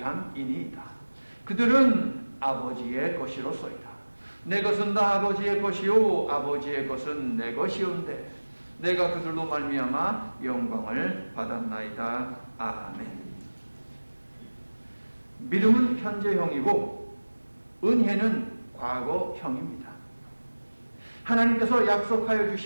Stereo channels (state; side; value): inverted; both; correlation -1.00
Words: 그들은 아버지의 것이로소이다. 내 것은 다 아버지의 것이요 아버지의 것은 내 것이온데 내가 그들로 말미암아 영광을 받았나이다. 아멘. 믿음은 현재형이고 은혜는 과거형입니다. 하나님께서 약속하여